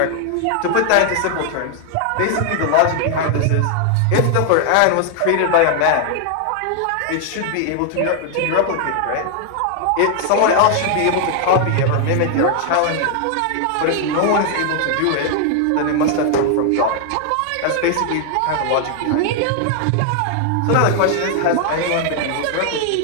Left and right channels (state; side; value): different; both; correlation 0.00